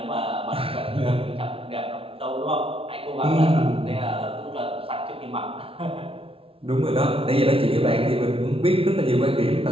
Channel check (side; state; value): left; late; 0.26 ms